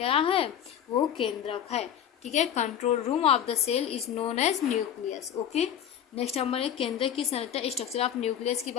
है? वो केंद्रक है। ठीक है, control room of the cell is known as nucleus. Okay, next हम केंद्रक की संरचना, स्ट्रक्चर ऑफ न्यूक्लियस की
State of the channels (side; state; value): right; quieter; 9.6 dB